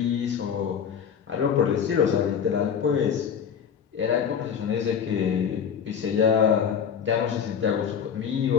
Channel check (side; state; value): right; quieter; 7.6 dB